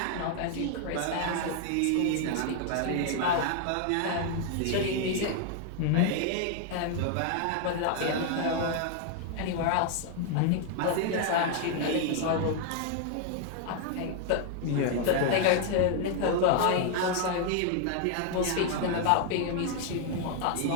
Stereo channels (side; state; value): both; different; correlation 0.00